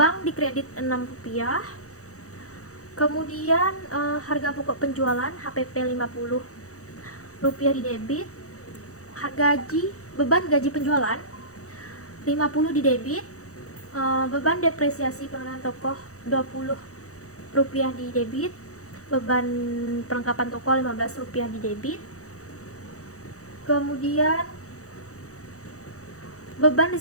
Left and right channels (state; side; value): late; right; 0.65 ms